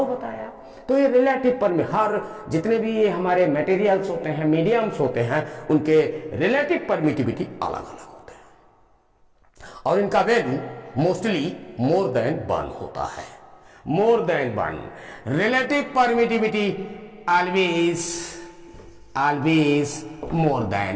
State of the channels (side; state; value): both; identical; correlation 1.00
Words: बताया। तो ये रिलेटिव हर जितने भी ये हमारे मटेरियल्स होते हैं, मीडियम्स होते हैं, उनके रिलेटिव परमिटिविटी अलग अलग होते हैं और इनका वैल्यू मोस्टली मोर देन 1 होता है। More than 1 relative permittivity always more